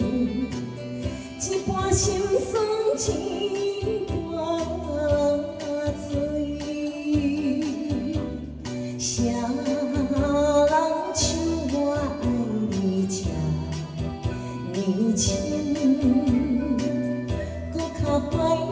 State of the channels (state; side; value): identical; both; correlation 1.00